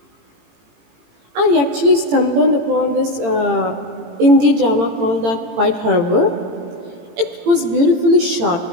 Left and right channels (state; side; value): late; left; 18 ms